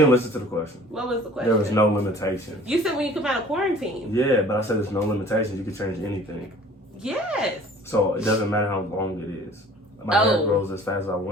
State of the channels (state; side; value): normal; both; correlation 0.49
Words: listen to the question. What was the question? There was no limitation. You said when you come out of quarantine. Yeah, but I said there's no limitations. You can change anything. Yes. So it doesn't matter how long it is. My hair Oh. grows as fast as I